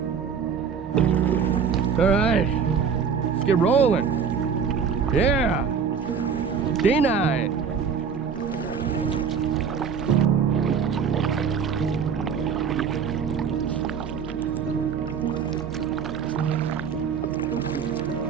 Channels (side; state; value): left; quieter; 6.6 dB